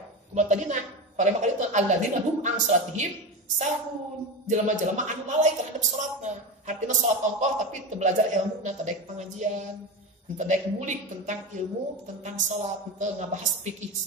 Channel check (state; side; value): normal; both; correlation 0.22